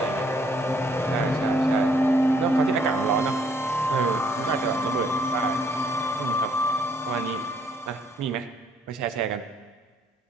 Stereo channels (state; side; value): normal; both; correlation 0.67